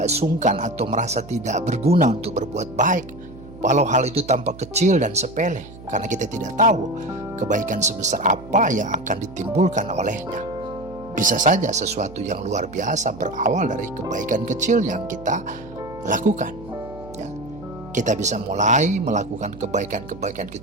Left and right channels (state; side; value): noise; right; hum, 17 dB below the sound